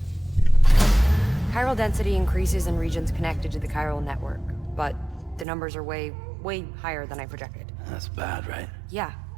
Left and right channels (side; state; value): left; drops out; at 5.5 s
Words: Chiral density increases in regions connected to the chiral network, but the numbers are way higher than I projected. That's bad, right? Yeah,